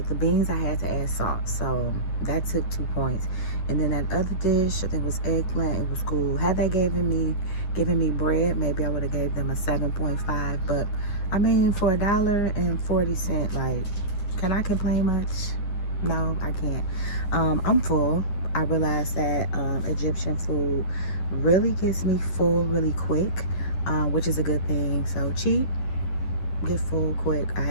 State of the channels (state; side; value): late; right; 11 ms